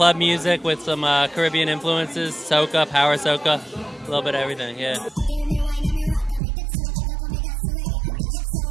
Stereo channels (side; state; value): left; drops out; at 6.4 s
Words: music with some Caribbean influences, soca, power soca, a little bit of everything, yeah. Give me wine and me rock and me dipso. Look how me dance to reggae and